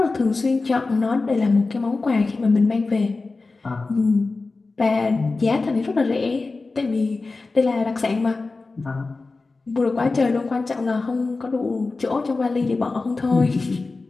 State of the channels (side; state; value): right; quieter; 3.7 dB